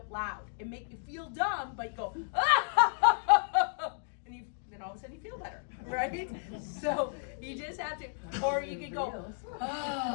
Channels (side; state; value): right; silent; digital silence